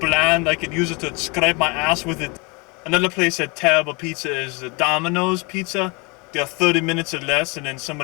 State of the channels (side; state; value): right; quieter; 30.0 dB